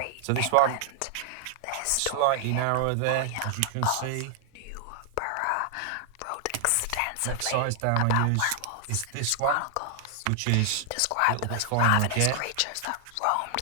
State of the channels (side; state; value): both; different; correlation 0.00